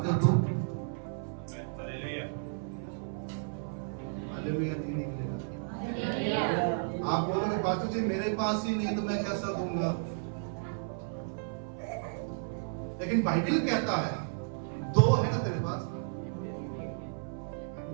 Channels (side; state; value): left; silent; 56 dB below the other